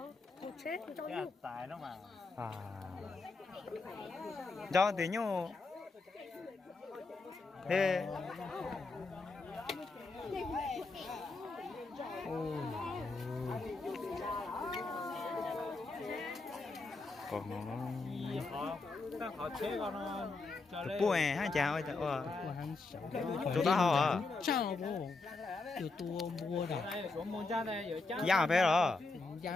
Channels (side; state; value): right; quieter; 3.6 dB